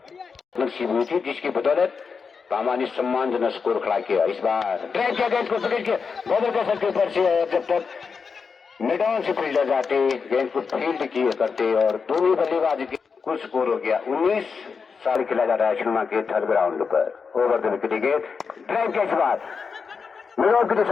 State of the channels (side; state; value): right; quieter; 5.5 dB